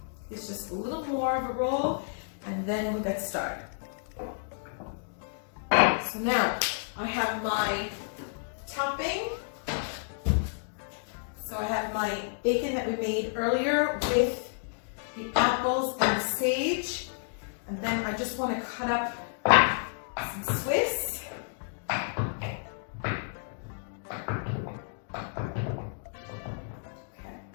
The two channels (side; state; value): right; silent; digital silence